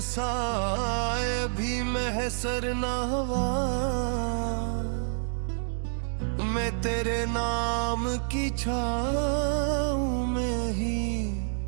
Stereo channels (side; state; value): left; silent; digital silence